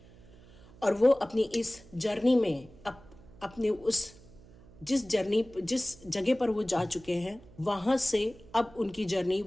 और वो अपनी इस जर्नी में अपने उस जिस जगह पर वो जा चुके हैं, वहाँ से अब उनकी जर्नी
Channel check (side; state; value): right; noise; hum, 23 dB below the sound